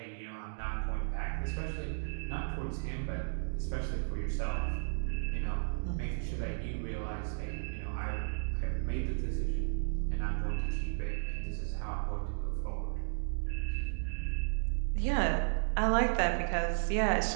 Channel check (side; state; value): left; silent; digital silence